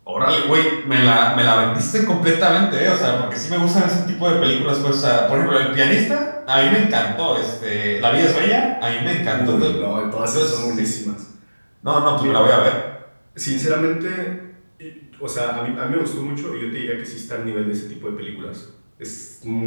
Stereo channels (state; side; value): inverted; both; correlation -1.00